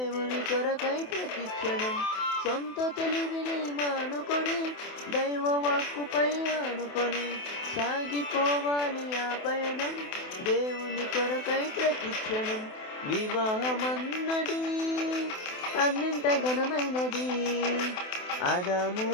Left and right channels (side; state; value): right; late; 28 ms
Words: కొరకై ప్రతిక్షణం. సొంత తెలివిని మానుకొని దైవ వాక్కుపై ఆనుకొని సాగిపోవాలి ఆ పయనం దేవుని కొరకై ప్రతిక్షణం. వివాహమన్నది అన్నింట ఘనమైనది, ఆదాము